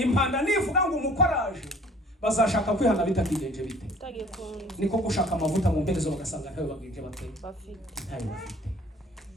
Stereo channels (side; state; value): both; normal; correlation 0.52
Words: nivuga ngo umukoraje, bazashaka kwihana bitakigenje bite, niko gushaka amavuta mu mperezo bagasanga ntayo bagenje bafite.